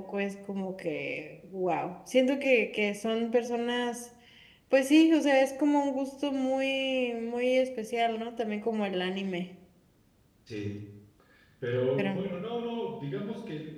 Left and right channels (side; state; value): both; identical; correlation 1.00